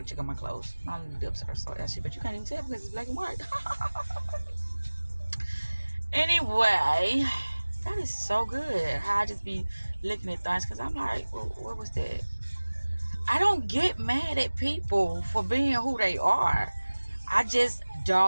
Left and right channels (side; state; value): both; inverted; correlation -1.00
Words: check on my clothes. My lips are so ashy, but you can't even tell because it's black and white. Anyway, that is so good how I just be looking at things, because I'm like, well, what was that? I don't get mad at people for being who they are. I just